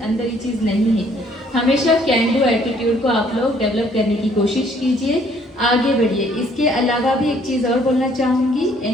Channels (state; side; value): normal; both; correlation 0.62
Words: अंदर ये चीज़ नहीं है। हमेशा कैन डू एटीट्यूड को आप लोग डेवलप करने की कोशिश कीजिए, आगे बढ़िए। इसके अलावा भी एक चीज़ और बोलना चाहूँगी,